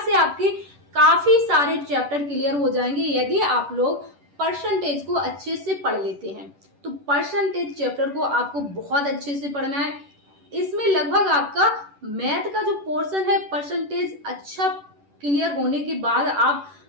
आपके काफी सारे चैप्टर क्लियर हो जाएंगे यदि आप लोग परसेंटेज को अच्छे से पढ़ लेते हैं। तो परसेंटेज चैप्टर को आपको बहुत अच्छे से पढ़ना है। इसमें लगभग आपका मैथ का जो पोर्शन है परसेंटेज अच्छा क्लियर होने के बाद आप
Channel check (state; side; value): late; left; 10 ms